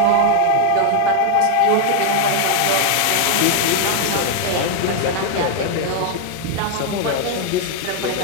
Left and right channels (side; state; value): both; different; correlation 0.00